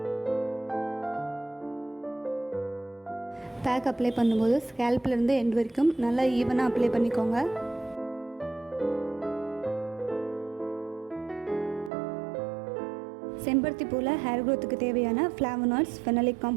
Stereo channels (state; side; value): drops out; left; at 11.9 s